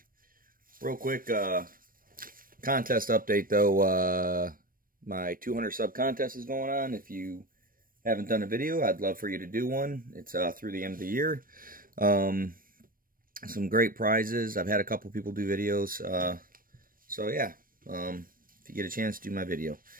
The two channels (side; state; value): left; late; 0.41 ms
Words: Real quick contest update, though. My 200 sub contest is going on. If you haven't done a video, I'd love for you to do one. It's through the end of the year. Some great prizes. I've had a couple people do videos. So yeah, if you get a chance, do my video.